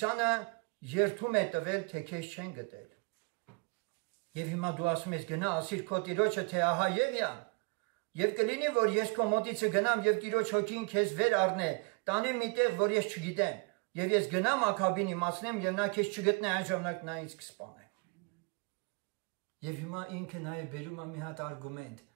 երթում է տվել, թե քեզ չեն գտել։ Եվ հիմա դու ասում ես գնա ասիր քո տիրոջը, թե ահա Եղիան։ Եվ կլինի, որ ես քո մոտիցը գնամ եւ Տիրոջ հոգին քեզ վեր առնե, տանեմ մի տեղ, որ ես չգիտեմ, եւ ես գնամ Աքաբին իմացնեմ եւ նա քեզ չգտնե, այն ժամանակ նա ինձ կսպանե։ Եվ հիմա ինքը նաեւ բերում է մի հատ արգումենտ,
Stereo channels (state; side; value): quieter; left; 31.2 dB